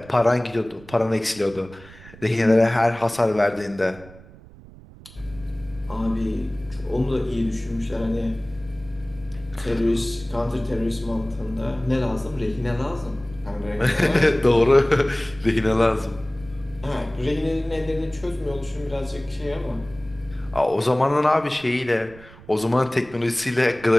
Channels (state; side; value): noise; right; rumble, 20 dB below the sound